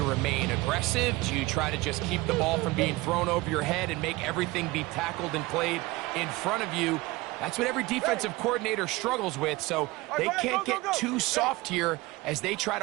remain aggressive? Do you try to just keep the ball from being thrown over your head and make everything be tackled and played in front of you? That's what every defensive coordinator struggles with, so they can't get too soft here as they try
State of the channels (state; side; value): quieter; left; 21.0 dB